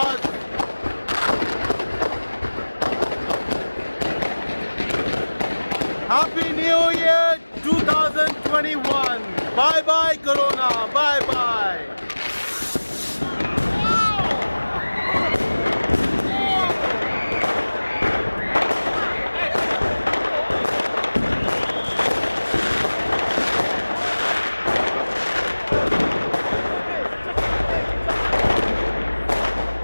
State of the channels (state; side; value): inverted; both; correlation -1.00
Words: Happy New Year 2021. Bye bye Corona. Bye bye.